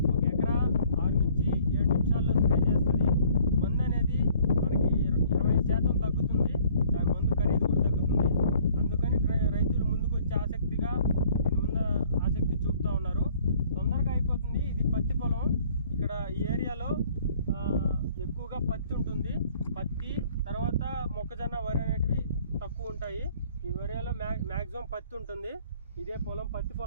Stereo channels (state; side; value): inverted; both; correlation -0.57